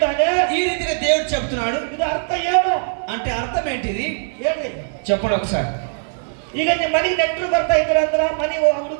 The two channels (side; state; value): left; silent; digital silence